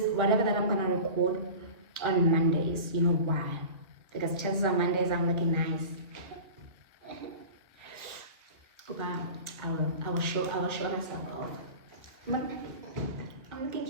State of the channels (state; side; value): late; left; 1.6 ms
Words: whatever that I'm gonna record on Mondays. You know why? Because chances are Mondays I'm looking nice. I will show myself off. I'm looking